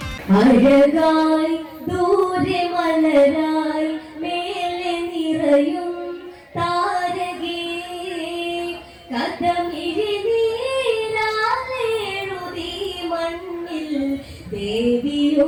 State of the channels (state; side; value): identical; both; correlation 1.00